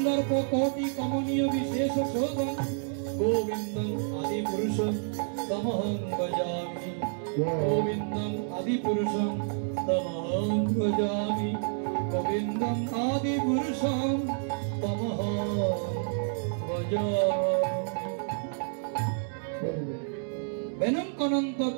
কোটি কমনীয় বিশেষ শোভং গোবিন্দং আদি পুরুষং তমহং ভজামি। গোবিন্দং আদি পুরুষং তমহং ভজামি। গোবিন্দং আদি পুরুষং তমহং ভজামি।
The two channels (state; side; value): silent; left; digital silence